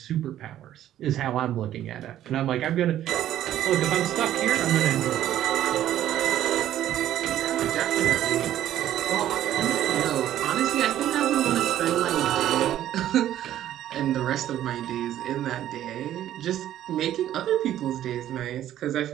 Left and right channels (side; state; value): left; quieter; 12.1 dB